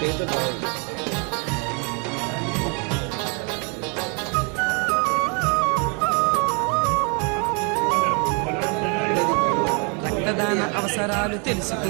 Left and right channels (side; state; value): left; quieter; 35.1 dB